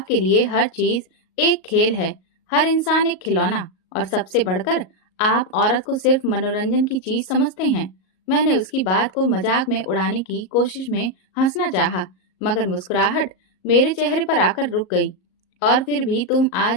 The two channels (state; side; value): late; right; 38 ms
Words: लिए हर चीज एक खेल है, हर इंसान एक खिलौना, और सबसे बढ़कर आप औरत को सिर्फ मनोरंजन की चीज समझते हैं। मैंने उसकी बात को मजाक में उड़ाने की कोशिश में हंसना चाहा, मगर मुस्कुराहट मेरे चेहरे पर आकर रुक गई और फिर भी तुम